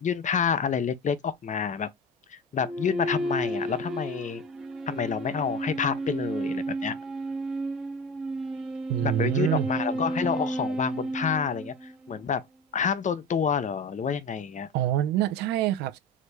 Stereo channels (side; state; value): both; normal; correlation 0.28